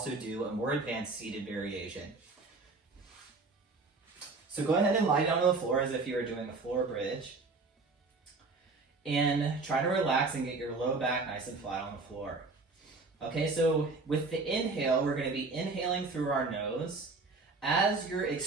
do a more advanced seated variation. So go ahead and lie down on the floor as if you were doing a floor bridge. And try to relax and get your low back nice and flat on the floor. Okay, so with the inhale, we're going to be inhaling through our nose as you're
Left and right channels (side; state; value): left; quieter; 3.8 dB